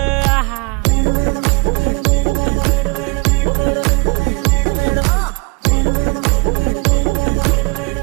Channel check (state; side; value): quieter; left; 30.8 dB